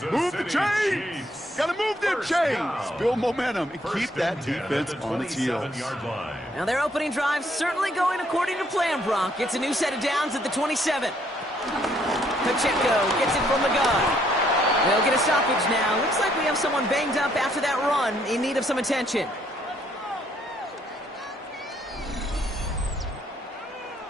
Move the chains! Got to move them chains! Build momentum and keep that defense on its heels. Now their opening drive certainly going according to plan, Brock. It's a new set of downs at the 27. Pacheco gets it from the gun. They'll get a stoppage now. Looks like we have someone banged up after that run in need of some attention.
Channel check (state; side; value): normal; both; correlation 0.68